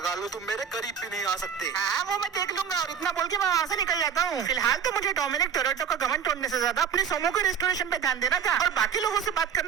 लो तुम मेरे करीब भी नहीं आ सकते। हाँ वो मैं देख लूंगा। और इतना बोल के मैं वहाँ से निकल जाता हूँ। फिलहाल तो मुझे डोमिनिक टोरेटो का घमंड तोड़ने से ज्यादा अपने सोमो के रेस्टोरेशन पे ध्यान देना था और बाकी लोगों से बात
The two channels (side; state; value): left; quieter; 7.9 dB